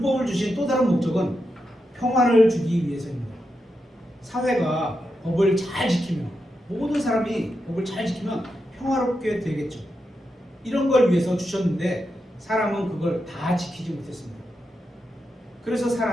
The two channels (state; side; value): normal; both; correlation 0.86